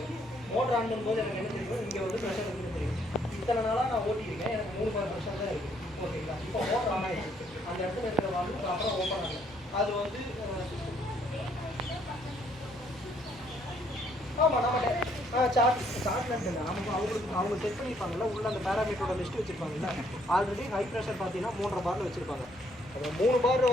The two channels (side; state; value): both; normal; correlation 0.68